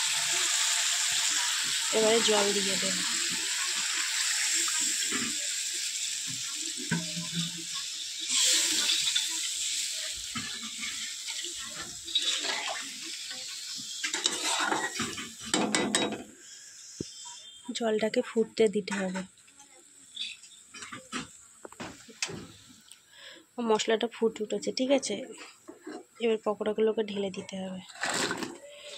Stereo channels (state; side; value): identical; both; correlation 1.00